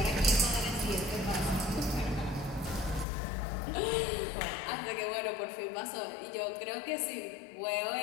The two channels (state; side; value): drops out; right; at 3.1 s